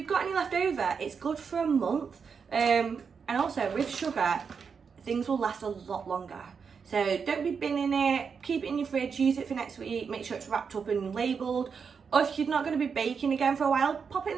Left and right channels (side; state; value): left; quieter; 6.0 dB